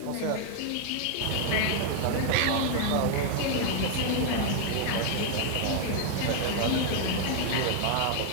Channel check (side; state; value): both; different; correlation 0.00